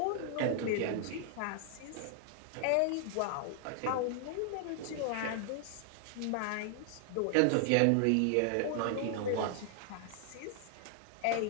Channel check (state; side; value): different; both; correlation 0.00